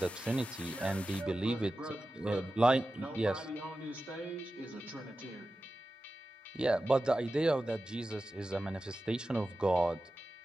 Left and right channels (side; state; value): both; normal; correlation 0.93